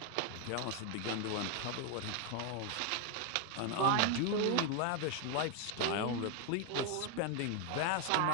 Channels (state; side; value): different; both; correlation 0.01